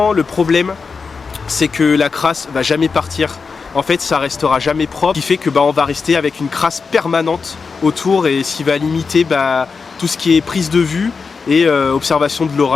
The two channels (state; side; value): quieter; right; 5.0 dB